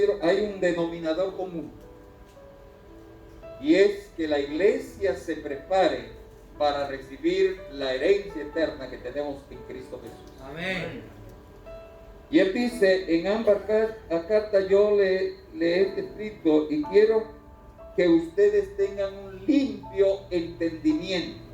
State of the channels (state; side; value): identical; both; correlation 1.00